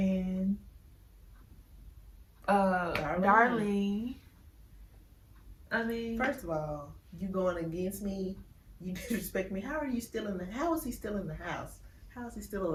Darlene." I mean, first of all, you going against me? You disrespect me. How are you still in the? How is he still in the house? How is he still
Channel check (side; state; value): both; identical; correlation 1.00